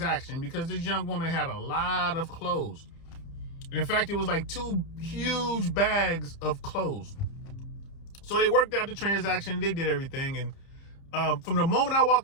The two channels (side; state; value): right; late; 30 ms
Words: because this young woman had a lot of clothes. In fact, it was like 2 huge bags of clothes. So they worked out the transaction. They did everything. And from the moment I